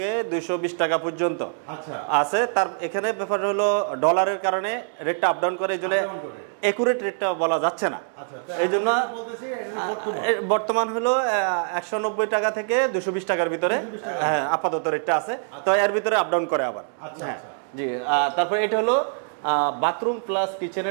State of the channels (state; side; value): silent; left; digital silence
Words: 220 টাকা পর্যন্ত আচ্ছা আছে তার এখানে ব্যাপার হলো ডলারের কারণে রেটটা আপ ডাউন করে এজন্য একুরেট রেটটা বলা যাচ্ছে না আচ্ছা এইজন্য বলতেছি এটা বর্তমান হলো 190 টাকা থেকে 220 টাকার ভিতরে হ্যাঁ আপাতত রেটটা আছে তো এর ভিতরে আপ ডাউন করে আবার আচ্ছা আচ্ছা জি তারপর এটা হলো বাথরুম প্লাস